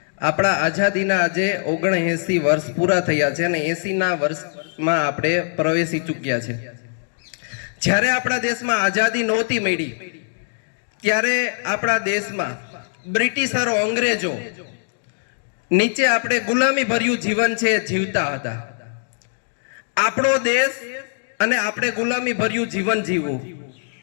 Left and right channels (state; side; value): silent; right; digital silence